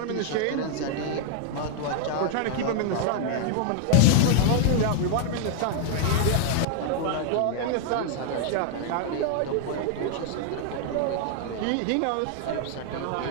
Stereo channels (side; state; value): both; different; correlation 0.00